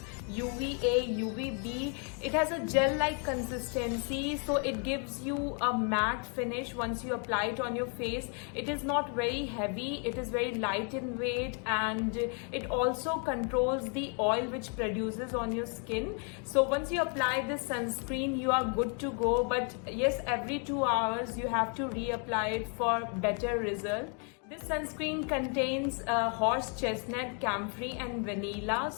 UVA, UVB. It has a gel-like consistency, so it gives you a matte finish once you apply it on your face. It is not very heavy, it is very light in weight, and it also controls the oil which produces on your skin. So once you apply this sunscreen, you are good to go. But yes, every 2 hours you have to reapply it for better result. This sunscreen contains horse chestnut, camphor and vanilla,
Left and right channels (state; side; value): quieter; right; 39.3 dB